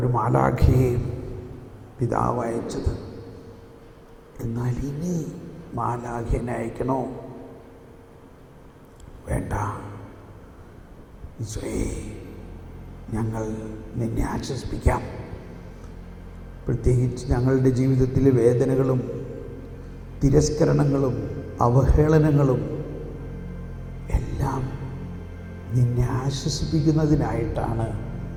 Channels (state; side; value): identical; both; correlation 1.00